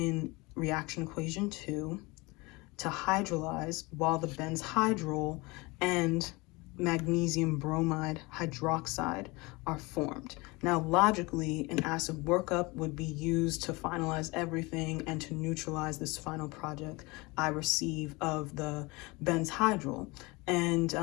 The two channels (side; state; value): right; quieter; 24.7 dB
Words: reaction equation 2, to hydrolyze while the benzhydrol and magnesium bromide hydroxide are formed. Now, logically, an acid workup would be used to finalize everything and to neutralize this final product I receive of the benzhydrol.